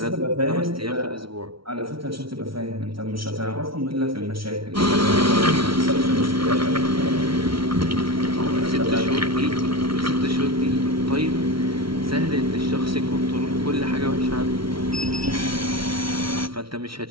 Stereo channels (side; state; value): left; late; 0.75 ms